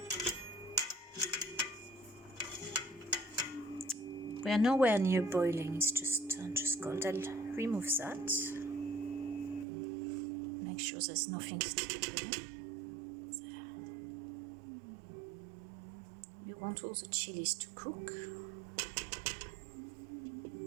We are nowhere near boiling, it's just cold. I'll remove that. Make sure there's nothing sticking. want all the chilies to cook.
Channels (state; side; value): drops out; left; at 9.7 s